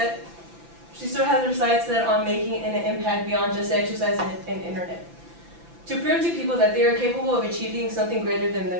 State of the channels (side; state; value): left; late; 5.9 ms